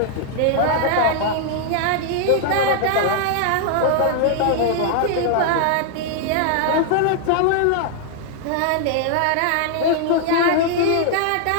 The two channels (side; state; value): both; different; correlation 0.00